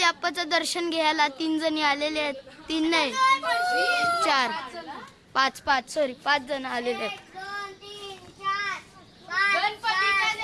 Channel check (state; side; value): identical; both; correlation 1.00